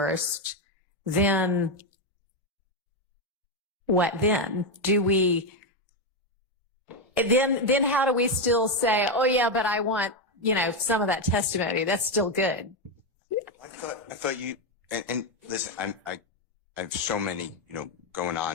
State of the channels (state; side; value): normal; both; correlation 0.06